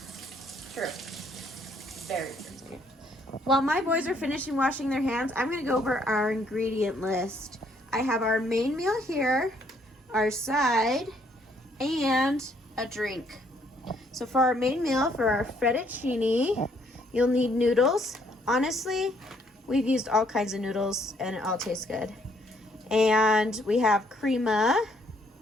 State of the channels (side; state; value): both; normal; correlation 0.68